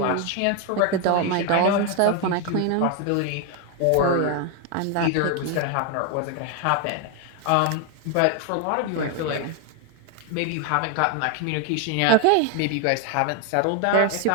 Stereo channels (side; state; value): both; different; correlation 0.01